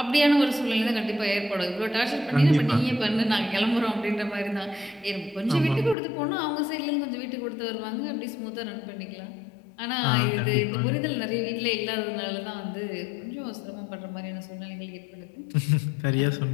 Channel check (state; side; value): drops out; right; at 6.0 s